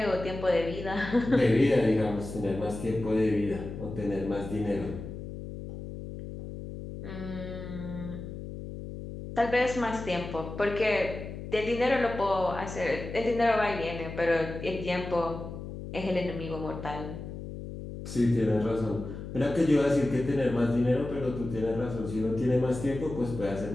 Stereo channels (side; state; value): left; noise; hum, 9 dB below the sound